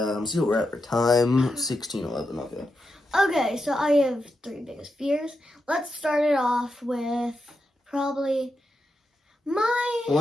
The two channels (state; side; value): normal; both; correlation 0.86